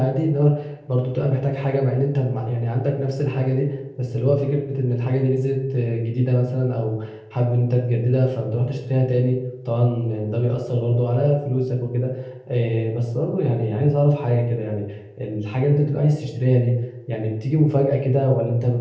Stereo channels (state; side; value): identical; both; correlation 1.00